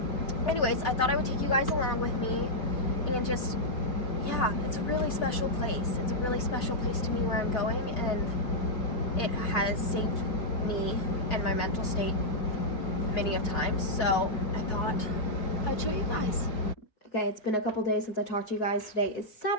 Anyways, I thought I would take you guys along with me, and just, yeah, it's a really special place. It's a really special place to me where I'm going, and it has saved me and my mental state many of times, so I thought I'd show you guys. Okay, it's been a couple days since I talked to you guys. Today is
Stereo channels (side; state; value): right; late; 4.7 ms